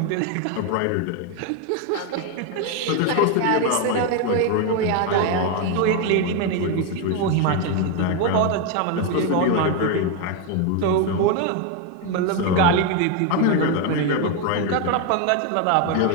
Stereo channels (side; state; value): both; different; correlation 0.02